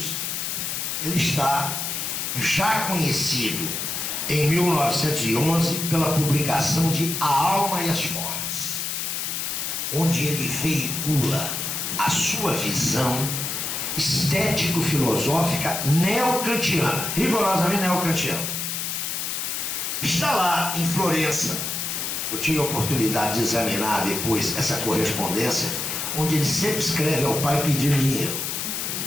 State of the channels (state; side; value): noise; left; hiss, 3 dB below the sound